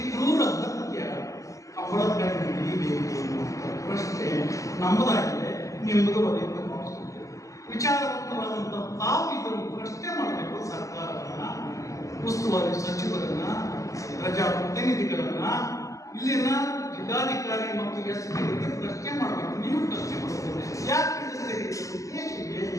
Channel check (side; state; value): right; late; 0.16 ms